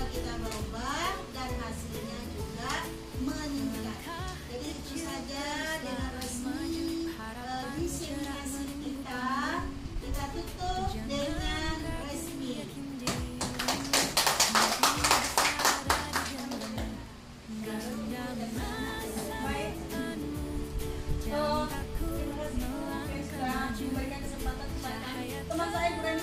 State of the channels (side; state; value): both; identical; correlation 1.00